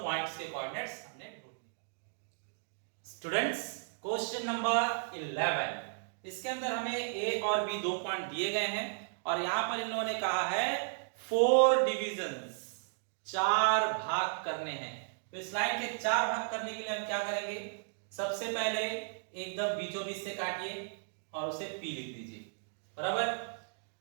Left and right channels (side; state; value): left; silent; digital silence